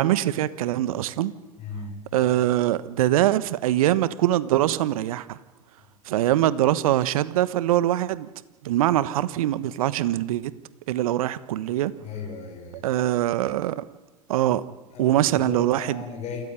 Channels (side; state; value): left; quieter; 12.5 dB